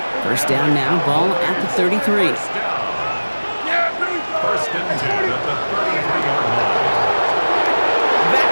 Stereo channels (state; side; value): inverted; both; correlation -1.00